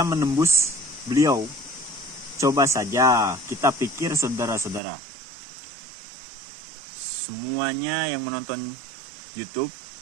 menembus beliau. Coba saja kita pikir saudara-saudara. Semuanya yang menonton YouTube,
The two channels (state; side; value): drops out; left; at 4.8 s